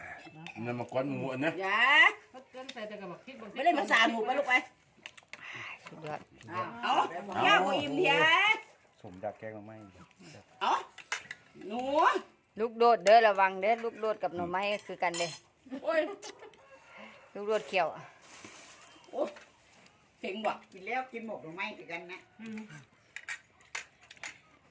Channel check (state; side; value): identical; both; correlation 1.00